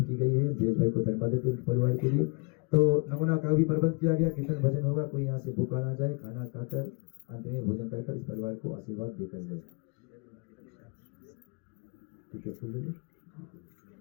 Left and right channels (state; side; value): quieter; right; 33.4 dB